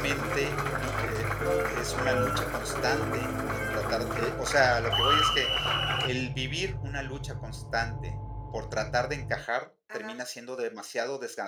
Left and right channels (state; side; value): identical; both; correlation 1.00